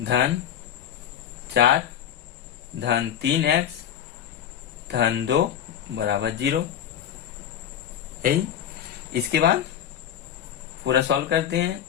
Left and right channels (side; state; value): right; quieter; 9.8 dB